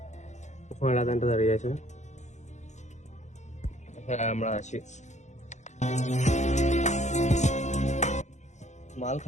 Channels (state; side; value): late; right; 0.34 ms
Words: ওখানে লাদেনটা দাঁড়িয়ে আছে। হ্যাঁ আমরা আছি, মাল